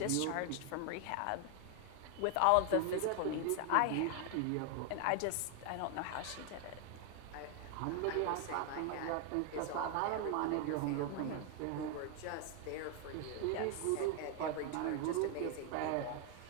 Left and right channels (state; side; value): different; both; correlation 0.00